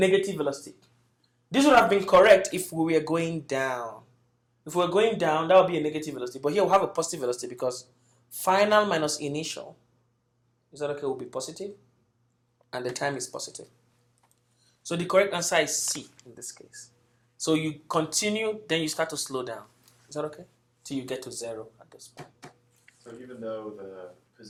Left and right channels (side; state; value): both; identical; correlation 1.00